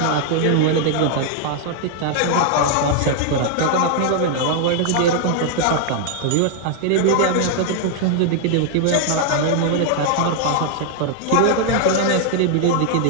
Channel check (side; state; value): both; different; correlation 0.00